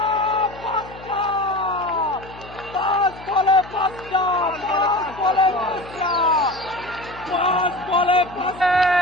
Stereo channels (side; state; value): left; noise; hum, 18 dB below the sound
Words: 5 বলে 5টা 5 বলে 5টা।